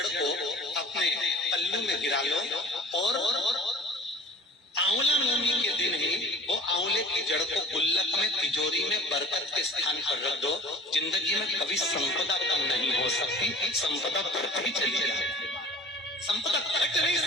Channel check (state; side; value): normal; both; correlation 0.45